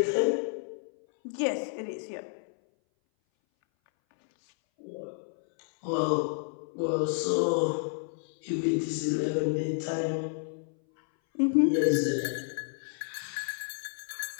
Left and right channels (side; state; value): right; silent; 58 dB below the other